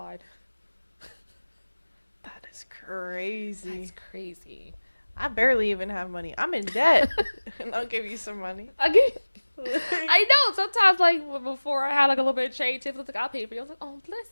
That is crazy. That's crazy. I barely even have money. I'm in debt. And I'll give you some money. I know. Sometimes, like, before I had, like, a little bit of change, Tiffany was like, I'll pay for you. I was like, oh,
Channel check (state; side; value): inverted; both; correlation -1.00